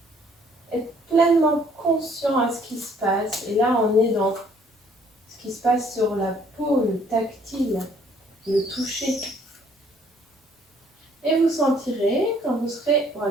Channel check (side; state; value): both; normal; correlation 0.61